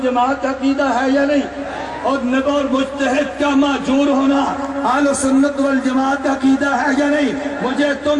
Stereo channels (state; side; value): identical; both; correlation 1.00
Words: کا عقیدہ ہے یا نہیں؟ اور نبی اور مجتہد کا معذور ہونا اہل سنت والجماعت کا عقیدہ ہے یا نہیں؟ مجھے